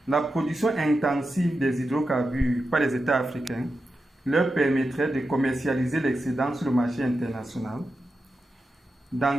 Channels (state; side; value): normal; both; correlation 0.90